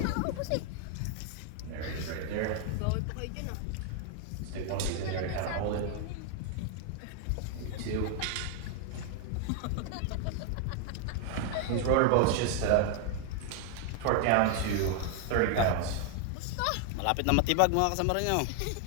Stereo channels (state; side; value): different; both; correlation 0.00